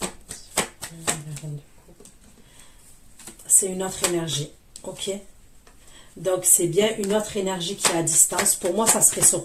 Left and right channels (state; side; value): identical; both; correlation 1.00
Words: C'est une autre énergie, ok? Donc c'est bien une autre énergie qui est à distance. Pour moi, ça serait ce